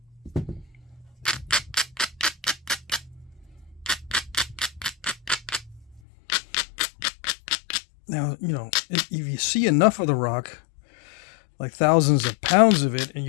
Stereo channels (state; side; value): drops out; right; at 6.0 s